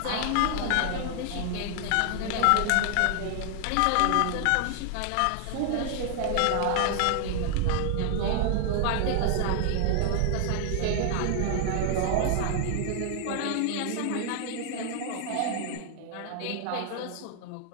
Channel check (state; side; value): different; both; correlation 0.00